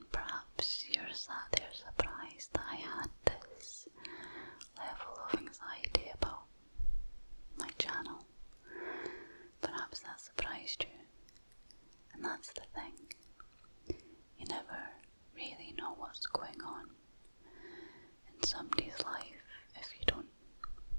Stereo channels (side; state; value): both; inverted; correlation -1.00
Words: perhaps you're sat there surprised that I had this level of anxiety about my channel. Perhaps that surprised you. And that's the thing. You never really know what's going on in somebody's life if you don't